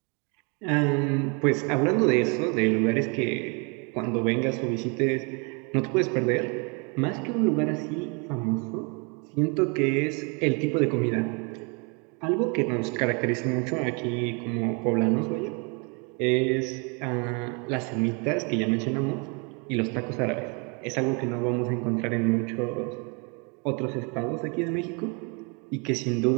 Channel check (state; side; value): quieter; left; 33.5 dB